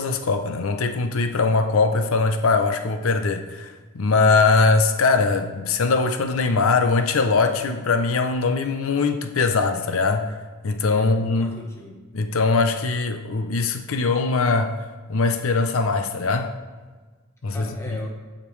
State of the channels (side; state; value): right; quieter; 3.5 dB